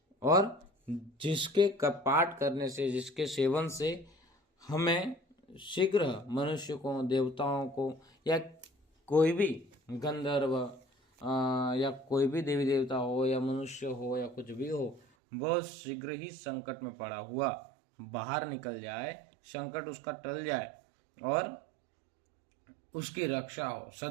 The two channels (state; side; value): drops out; left; at 15.0 s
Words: और जिसके पाठ करने से, जिसके सेवन से हमें शीघ्र मनुष्य को, देवताओं को, या कोई भी गंधर्व या कोई भी देवी देवता हो या मनुष्य हो या कुछ भी हो, बहुत शीघ्र ही संकट में पड़ा हुआ बाहर निकल जाए, संकट उसका टल जाए और उसकी रक्षा हो,